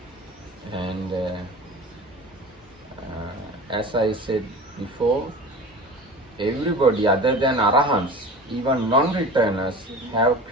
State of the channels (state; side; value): normal; both; correlation 0.36